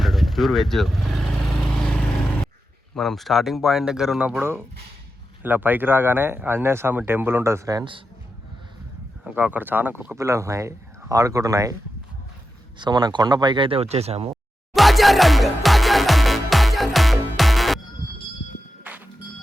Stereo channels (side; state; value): both; normal; correlation 0.89